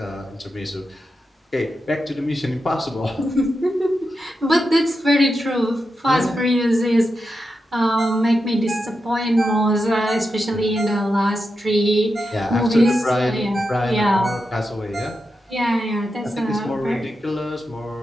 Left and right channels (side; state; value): both; normal; correlation 0.88